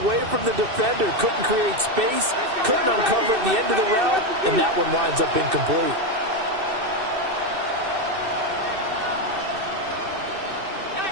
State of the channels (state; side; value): late; left; 2.6 ms